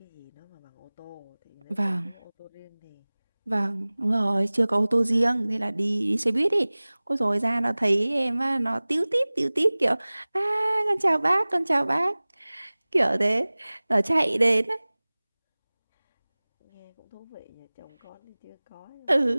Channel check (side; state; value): both; inverted; correlation -1.00